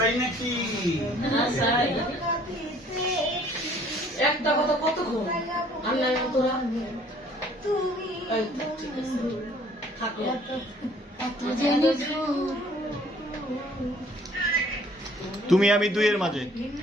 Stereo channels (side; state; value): both; normal; correlation 0.57